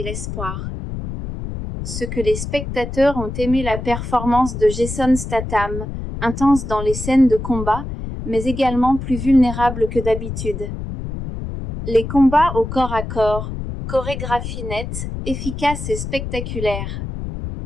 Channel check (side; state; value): left; noise; rumble, 7 dB below the sound